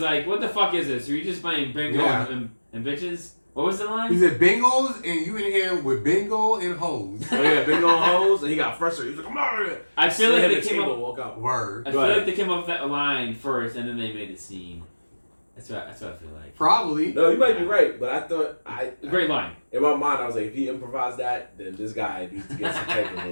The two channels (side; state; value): both; inverted; correlation -1.00